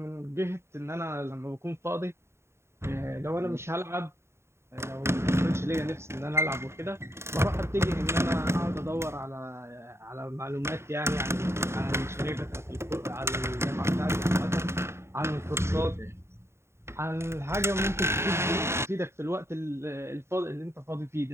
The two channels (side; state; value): left; late; 0.13 ms